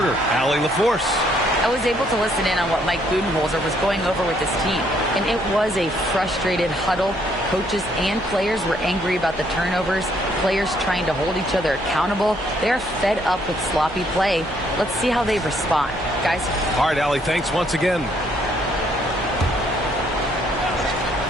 Allie LaForce. I was able to listen in on what Mike Budenholzer was going over with his team, and it was a frustrated huddle. Coaches and players were angry about the turnovers, players trying to hold each other accountable. They're fed up with sloppy play. Let's see how they respond. Guys? All right, Allie, thanks once again.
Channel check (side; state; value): right; noise; hum, 15 dB below the sound